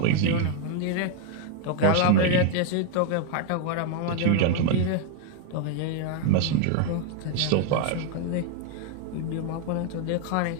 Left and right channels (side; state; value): both; different; correlation 0.00